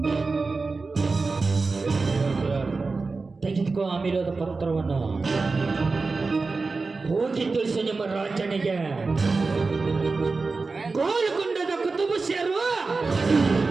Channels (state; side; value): quieter; left; 4.0 dB